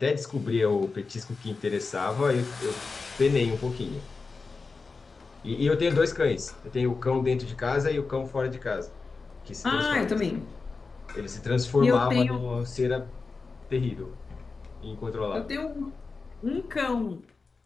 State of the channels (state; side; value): quieter; right; 4.3 dB